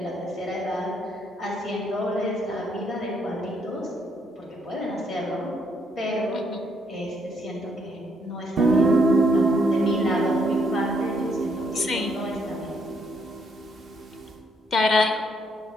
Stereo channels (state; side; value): normal; both; correlation 0.72